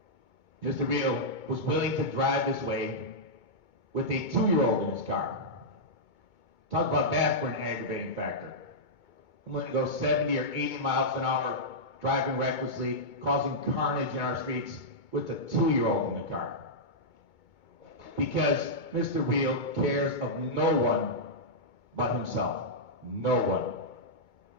Mr. Real was willing to drive this way with a 2-year-old in his car. Talk about that for an aggravating factor. I'm willing to go 70 or 80 miles an hour, driving recklessly, causing carnage in our streets with a 2-year-old in the car. Because Mr. Real cares of no one but himself. No one.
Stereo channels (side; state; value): right; late; 2.2 ms